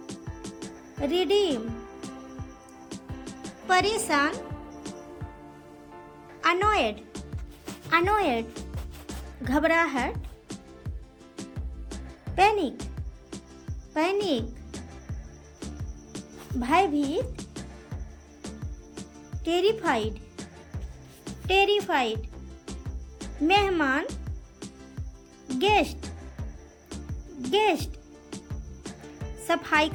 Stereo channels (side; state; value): both; identical; correlation 1.00